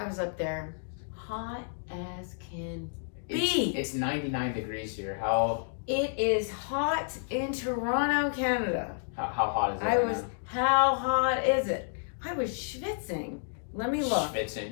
was up there. Hot as can be. It's 99 degrees here. How? It is hot in Toronto, Canada. How hot is it? How hot is it? I was schwitzing. Let me look.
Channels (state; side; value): silent; right; digital silence